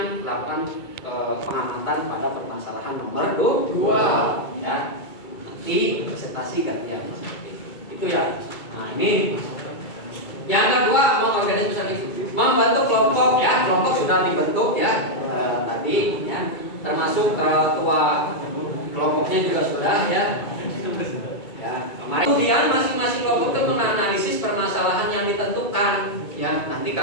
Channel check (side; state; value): right; late; 2.2 ms